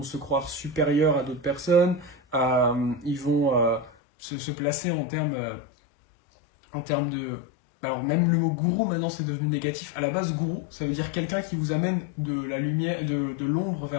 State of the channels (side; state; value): right; drops out; at 3.9 s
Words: se croire supérieurs à d'autres personnes, ils vont se placer en termes de... Alors même le mot gourou maintenant c'est devenu négatif. À la base gourou ça veut dire quelqu'un qui vous amène de la lumière, de l'ombre